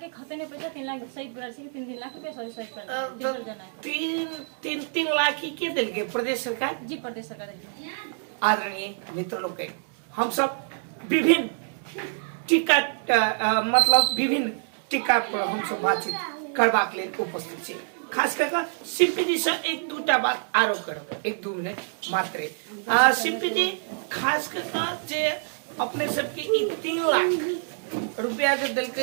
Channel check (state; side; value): silent; left; digital silence